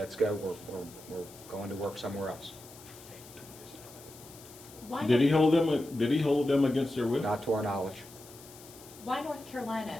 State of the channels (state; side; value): noise; left; hiss, 19 dB below the sound